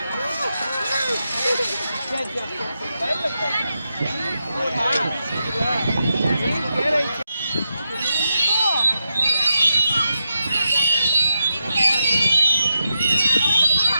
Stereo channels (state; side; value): inverted; both; correlation -0.86